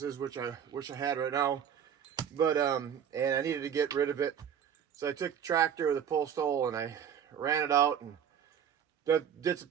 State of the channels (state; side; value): quieter; left; 8.5 dB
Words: which I wish I had right now. But and I needed to get rid of it, so I took the tractor with a post hole and I ran it out and did some